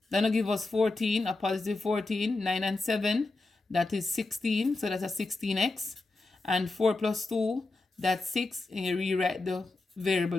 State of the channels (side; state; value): right; quieter; 3.3 dB